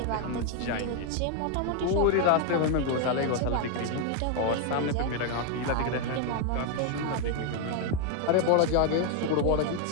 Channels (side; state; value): both; different; correlation 0.01